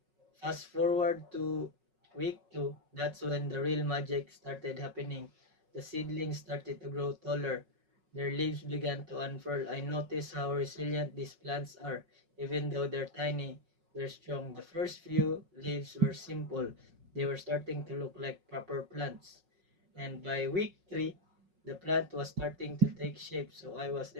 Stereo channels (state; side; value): late; left; 5.4 ms